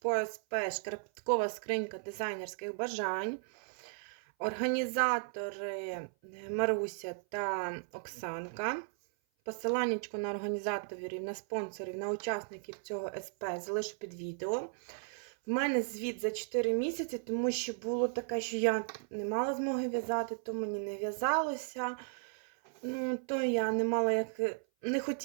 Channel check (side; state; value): left; silent; 54 dB below the other